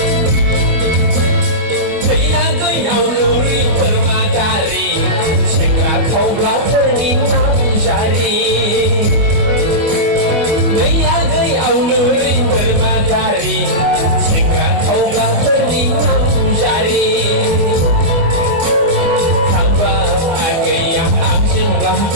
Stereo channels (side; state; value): left; late; 25 ms